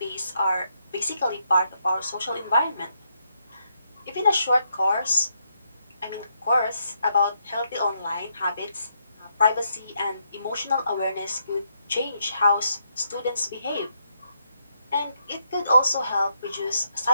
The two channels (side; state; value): both; inverted; correlation -0.77